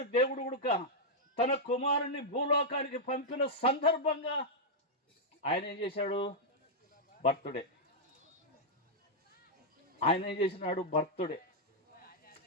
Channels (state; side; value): normal; both; correlation -0.05